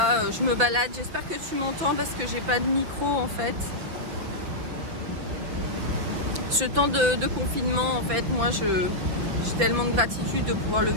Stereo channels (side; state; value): left; late; 6.0 ms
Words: je me balade, j'espère que tu m'entends parce que j'ai pas de micro en fait. Ce temps de confinement en fait, moi j'ai tellement de gratitude de pouvoir le